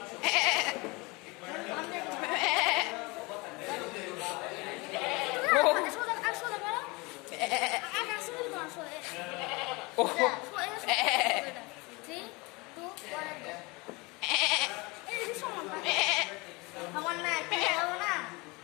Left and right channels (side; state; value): right; quieter; 25.7 dB